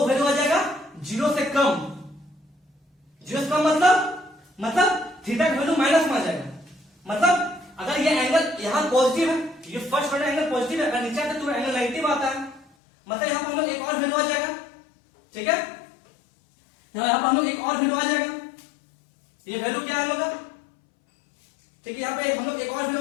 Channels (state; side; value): drops out; right; at 12.7 s